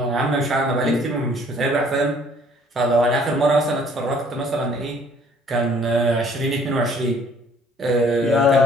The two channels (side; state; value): both; normal; correlation 0.58